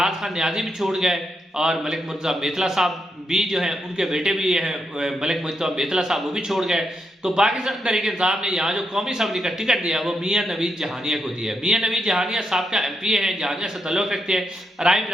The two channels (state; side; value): normal; both; correlation 0.82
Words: खान न्याजी भी छोड़ गए और मलिक मुर्तज़ा मेतला साहब भी जो हैं उनके बेटे भी हैं मलिक मुर्तज़ा मेतला साहब, वो भी छोड़ गए। तो पाकिस्तान तहरीक इंसाफ ने यहाँ जो कौमी असम्बली का टिकट दिया वो मियाँ नवीद जहानिया को दिया है। मियाँ नवीद जहानिया साहब का MPA हैं, जहानिया से ताल्लुक़ रखते हैं, राय